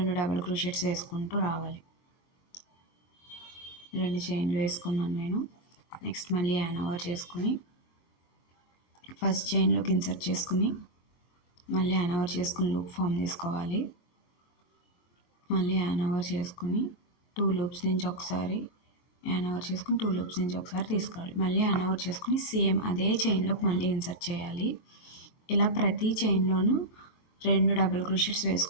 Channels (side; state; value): right; late; 22 ms